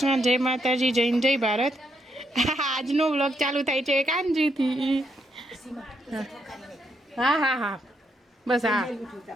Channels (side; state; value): both; normal; correlation 0.78